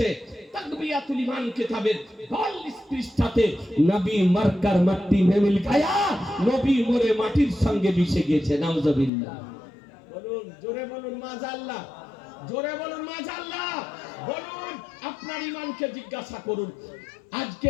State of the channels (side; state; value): right; drops out; at 9.1 s